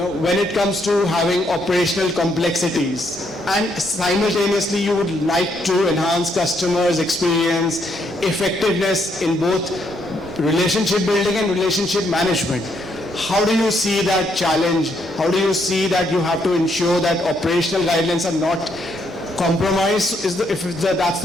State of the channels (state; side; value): normal; both; correlation 0.74